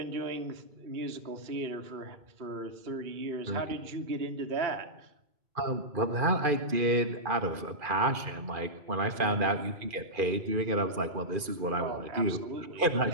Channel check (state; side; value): late; left; 2.5 ms